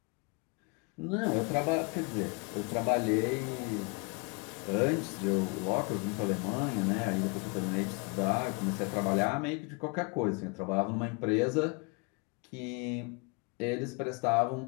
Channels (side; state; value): right; quieter; 30.3 dB